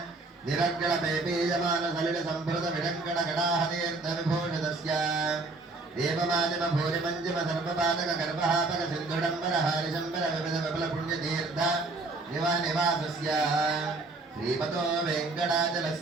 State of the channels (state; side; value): quieter; left; 3.4 dB